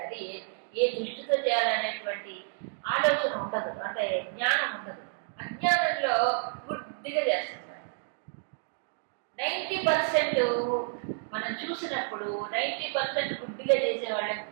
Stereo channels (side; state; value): left; silent; digital silence